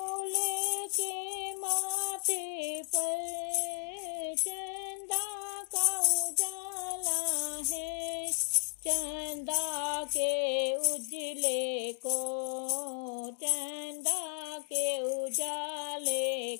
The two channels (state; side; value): silent; right; digital silence